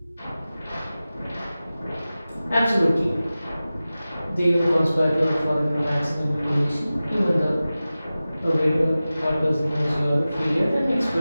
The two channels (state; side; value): inverted; both; correlation -0.96